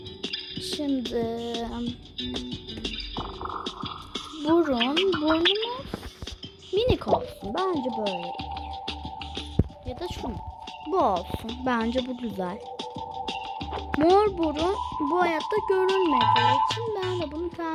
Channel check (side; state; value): both; identical; correlation 1.00